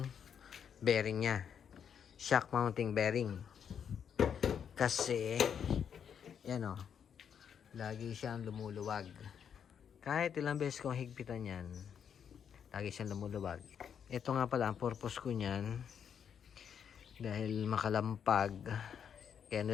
bearing niya. Shock mounting bearing. Kasi, yan o, lagi siyang lumuluwag. Kahit ilang beses kong higpitan yan, lagi siyang lumuluwag. Ito nga pala, ang purpose ko niyan, dahil makalampag, kaya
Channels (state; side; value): quieter; right; 7.9 dB